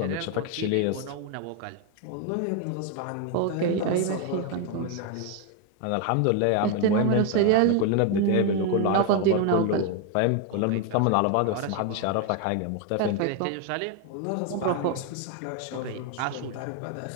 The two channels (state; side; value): different; both; correlation 0.01